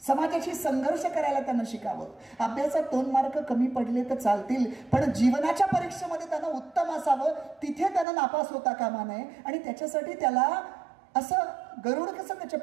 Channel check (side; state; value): left; drops out; at 8.1 s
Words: समाजाशी संघर्ष करायला त्यांना शिकावं. अभ्यासात 2 मार्क कमी पडले तर चालतील, पण जीवनाच्या परीक्षेमध्ये त्यांना उत्तम असावं, तिथे त्यांना नापास होता कामा नये. आणि त्याच्यासाठी त्याला असं गरुड कसं त्याच्या